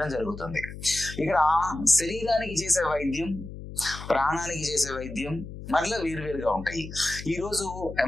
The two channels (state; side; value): noise; left; hum, 11 dB below the sound